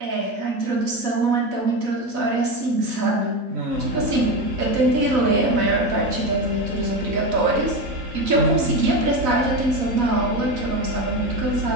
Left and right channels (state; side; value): late; left; 4.0 ms